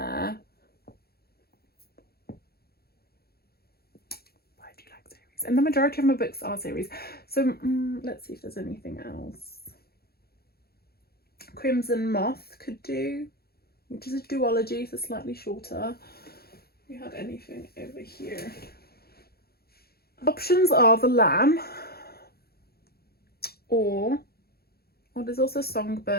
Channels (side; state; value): right; late; 0.45 ms